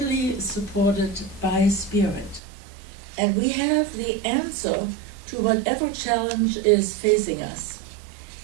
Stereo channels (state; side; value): drops out; left; at 2.4 s